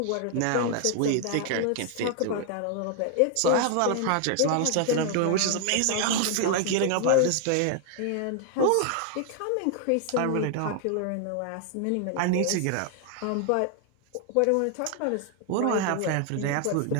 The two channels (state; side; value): different; both; correlation 0.00